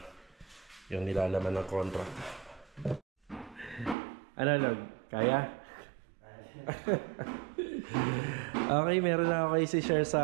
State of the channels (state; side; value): drops out; left; at 4.0 s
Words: yung nilalaman ng contract. Ano, Log? Kaya? Okay, meron na ako kayo si-share